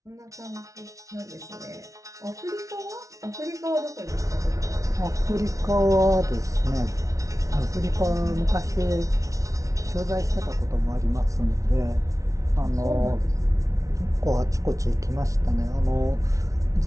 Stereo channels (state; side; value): late; left; 0.16 ms